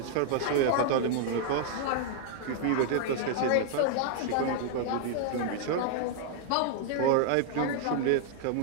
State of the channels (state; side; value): different; both; correlation -0.01